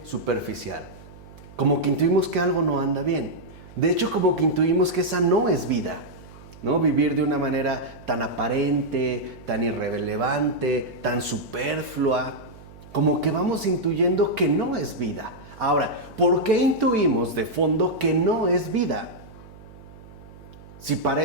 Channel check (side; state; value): right; noise; hum, 20 dB below the sound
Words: superficial. Como que intuimos que algo no anda bien. De hecho, como que intuimos que esa no es vida, ¿no? Vivir de una manera tan aparente, tan irrelevante, tan superflua. Como que vamos intuyendo que no es vida. Ahora, ¿por qué intuimos de fondo que no es vida? Si